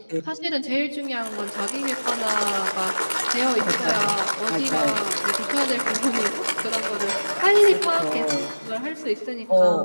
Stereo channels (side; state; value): both; inverted; correlation -1.00